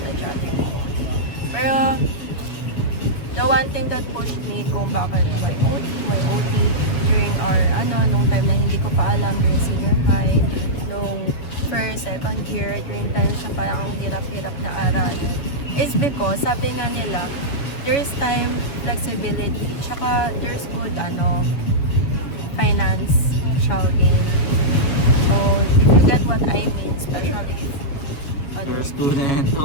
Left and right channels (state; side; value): late; right; 7.1 ms